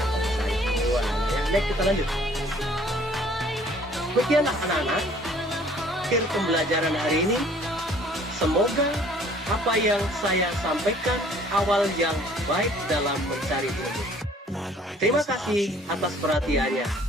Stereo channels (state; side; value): normal; both; correlation 0.56